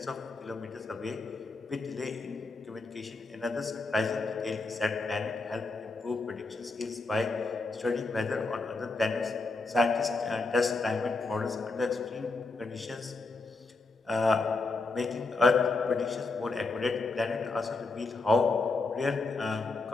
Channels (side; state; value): right; quieter; 3.6 dB